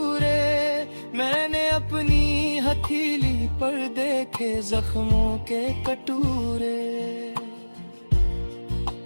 मैंने अपनी हथेली पर देखे जख्मों के कटूरे।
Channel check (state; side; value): inverted; both; correlation -1.00